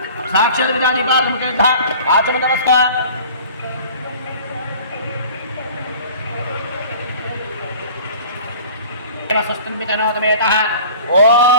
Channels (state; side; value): inverted; both; correlation -0.44